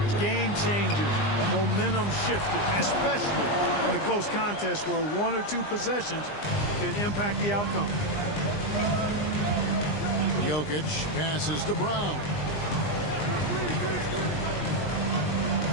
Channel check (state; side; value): late; right; 20 ms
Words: game changers, momentum shifters, especially in a close contest where 1 or 2 possessions can impact the outcome. Jokic passes to Brown.